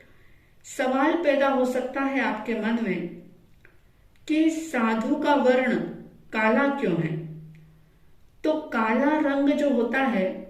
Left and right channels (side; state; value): both; identical; correlation 1.00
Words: सवाल पैदा हो सकता है आपके मन में कि साधु का वर्ण काला क्यों है। तो काला रंग जो होता है